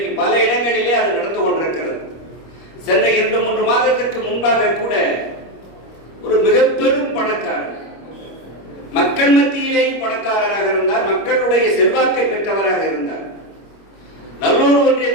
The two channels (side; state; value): right; late; 25 ms